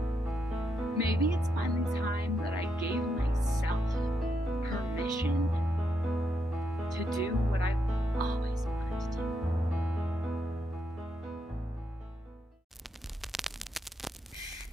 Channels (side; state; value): both; normal; correlation 0.80